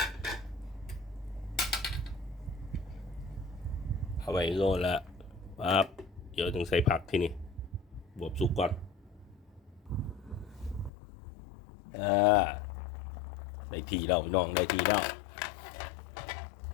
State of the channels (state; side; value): drops out; right; at 10.9 s